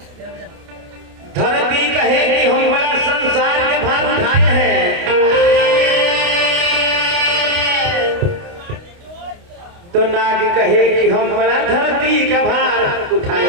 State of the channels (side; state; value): left; late; 29 ms